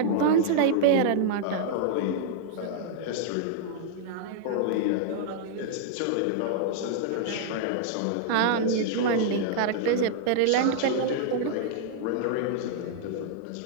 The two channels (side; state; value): both; different; correlation -0.01